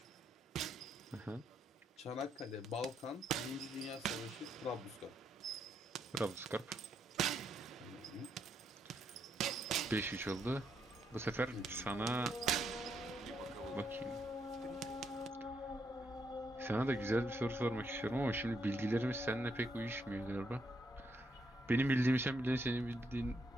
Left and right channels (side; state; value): both; normal; correlation 0.77